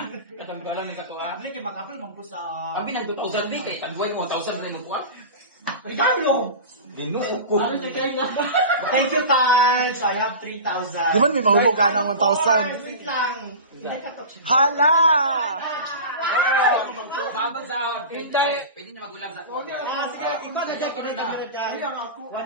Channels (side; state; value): both; inverted; correlation -0.31